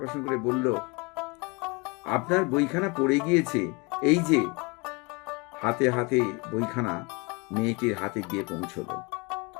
করে বলল, আপনার বইখানা পড়ে গিয়েছে, এই যে। হাতে হাতে বইখানা মেয়েটির হাতে গিয়ে পৌঁছল।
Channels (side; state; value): right; quieter; 28.5 dB